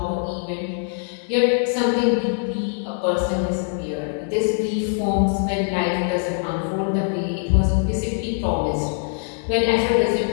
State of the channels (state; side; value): silent; right; 64 dB below the other